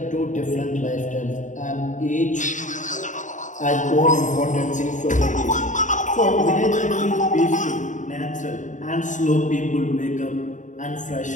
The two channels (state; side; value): late; right; 0.36 ms